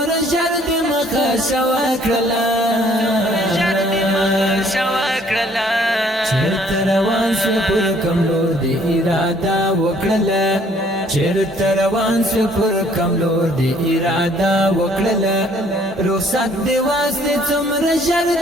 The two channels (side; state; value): both; normal; correlation 0.60